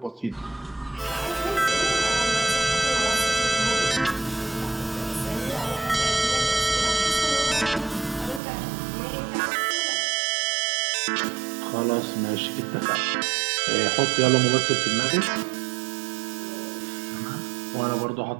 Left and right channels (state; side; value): drops out; left; at 8.4 s